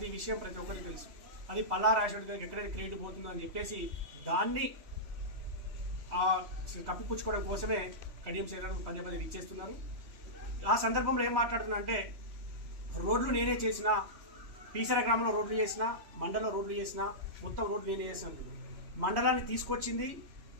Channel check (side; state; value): left; late; 3.0 ms